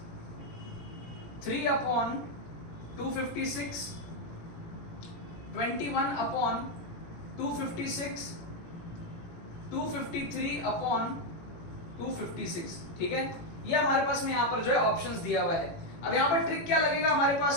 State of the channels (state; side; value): late; right; 18 ms